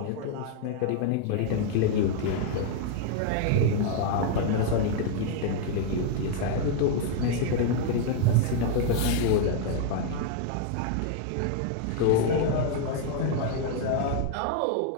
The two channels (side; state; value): both; different; correlation 0.00